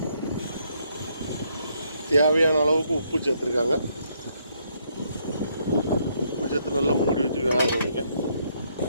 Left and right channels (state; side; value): inverted; both; correlation -0.72